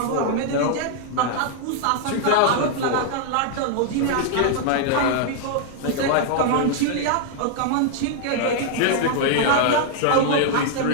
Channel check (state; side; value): different; both; correlation 0.00